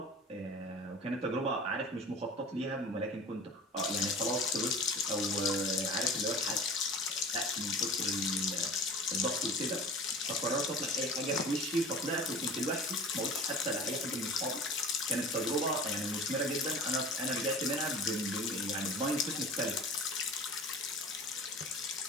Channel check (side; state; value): both; normal; correlation 0.39